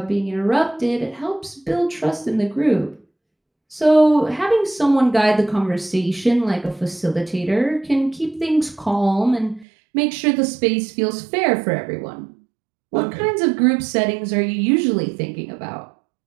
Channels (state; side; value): drops out; left; at 9.7 s